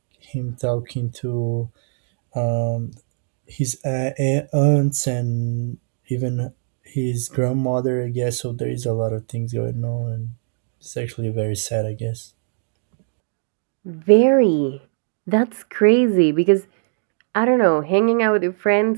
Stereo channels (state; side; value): silent; left; digital silence